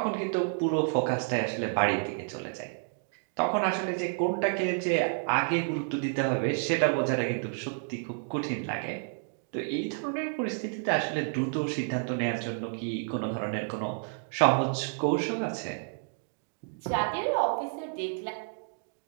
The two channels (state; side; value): silent; left; digital silence